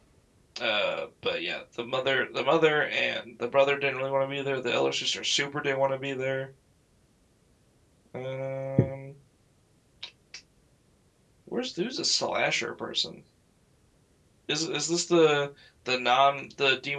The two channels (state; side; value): identical; both; correlation 1.00